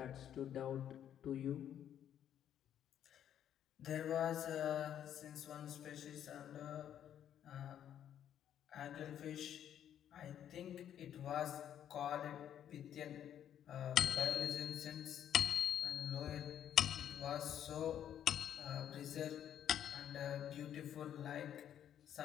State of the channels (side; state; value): right; quieter; 10.1 dB